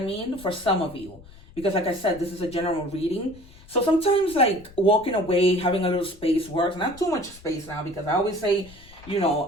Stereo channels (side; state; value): left; noise; rumble, 22 dB below the sound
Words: mean? For some of you. Because like I said, this is a general reading. So sometimes like walking away, having a little space works. Not too much space now, because I always say,